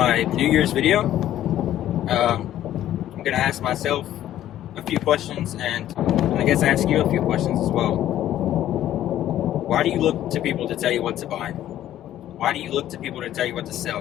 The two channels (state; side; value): quieter; right; 12.4 dB